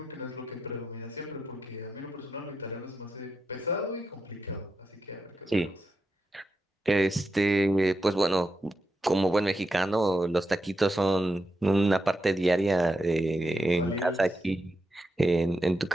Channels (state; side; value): normal; both; correlation 0.86